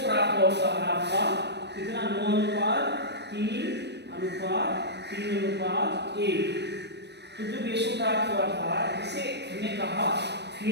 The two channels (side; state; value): left; late; 0.50 ms